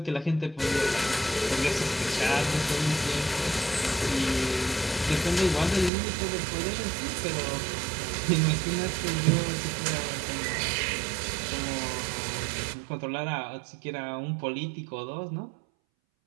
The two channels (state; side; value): drops out; left; at 5.9 s